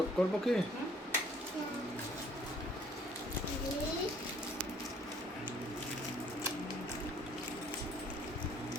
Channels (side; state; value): both; normal; correlation 0.59